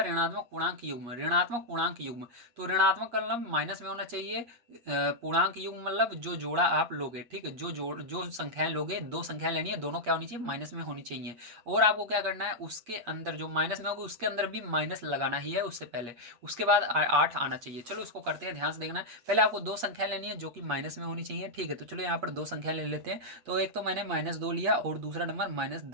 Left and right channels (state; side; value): late; left; 8.4 ms